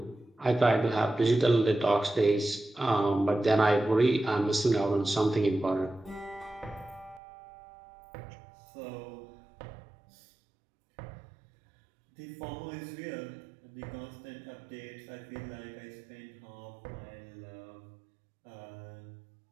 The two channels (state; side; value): drops out; left; at 7.2 s